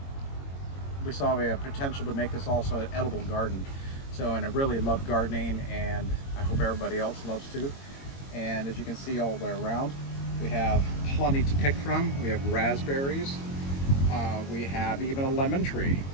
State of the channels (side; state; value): right; late; 22 ms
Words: we saw a potential to make this also an edible garden. So, and I really love gardening, and I hope everybody else loves too. And as you can see all the way around, we have plenty to pick from. We have raspberries. We have even a lemon tree.